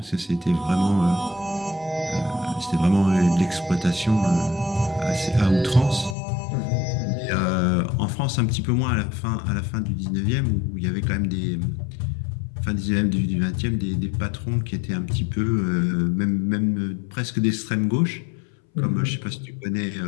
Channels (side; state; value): right; drops out; at 6.2 s